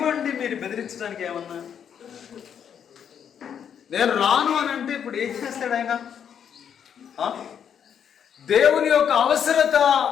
అండి మీరు బెదిరించడానికి? ఏమన్నా నేను రాను అని అంటే ఇప్పుడు ఏం చేస్తాడు ఆయన? దేవుని యొక్క అవసరత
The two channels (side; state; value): right; quieter; 8.3 dB